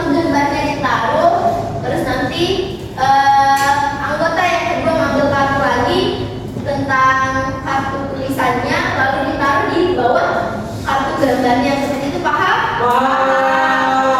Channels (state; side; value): identical; both; correlation 1.00